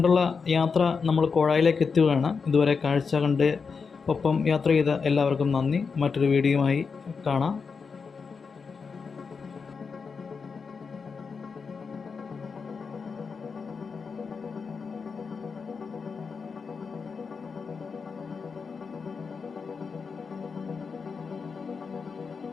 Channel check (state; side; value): quieter; right; 5.3 dB